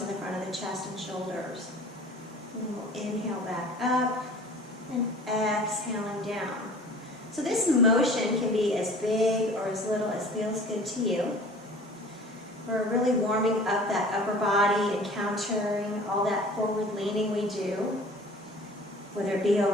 in the front of the chest and shoulders. And then we'll inhale back up and exhaling down. So this motion can be as big or as little as feels good to you. We're really warming up that upper body and countering all that forward leaning we do, whether it be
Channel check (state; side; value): normal; both; correlation 0.45